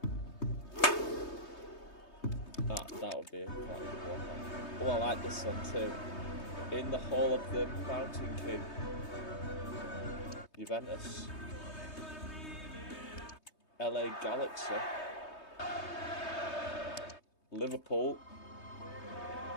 That would be quite a good walkout. Oh, I like this one too. In the Hall of the Mountain King. Juventus. LA Galaxy. Liverpool.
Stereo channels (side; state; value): right; late; 3.2 ms